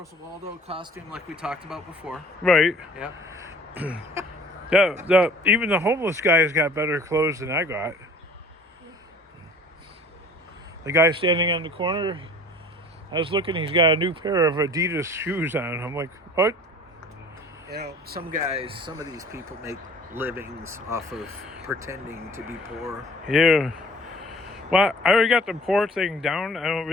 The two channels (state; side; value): normal; both; correlation 0.48